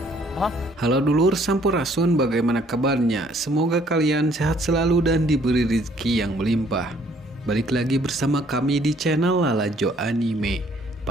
Halo dulur Sampurasun, bagaimana kabarnya? Semoga kalian sehat selalu dan diberi rezeki yang melimpah. Balik lagi bersama kami di channel Lalajo Anime.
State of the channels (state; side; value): normal; both; correlation 0.62